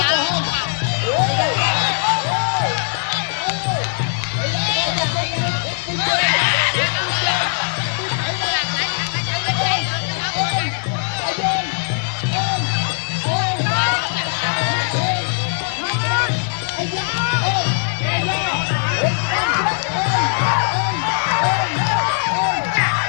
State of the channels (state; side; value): silent; right; digital silence